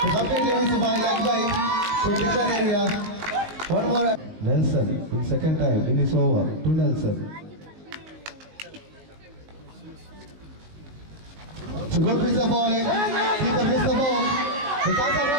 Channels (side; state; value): left; late; 19 ms